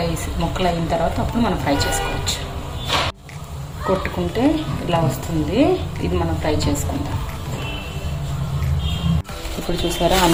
అయిన తర్వాత అప్పుడు మనం ఫ్రై చేసుకోవచ్చు. కొట్టుకుంటే ఇలా వస్తుంది, ఇది మనం ఫ్రై చేసుకుందాం. ఇప్పుడు చూసారా,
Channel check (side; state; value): both; identical; correlation 1.00